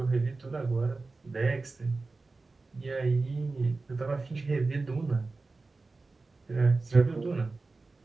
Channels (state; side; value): quieter; left; 3.6 dB